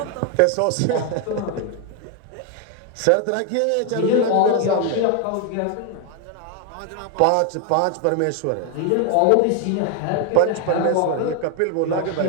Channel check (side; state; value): both; different; correlation 0.01